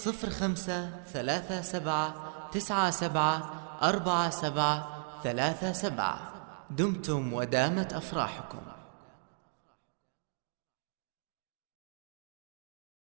37 97 47 37. دمتم ودامت أفراحكم.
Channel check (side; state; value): left; silent; digital silence